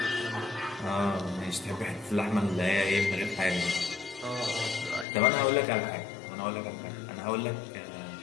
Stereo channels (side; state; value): right; drops out; at 5.1 s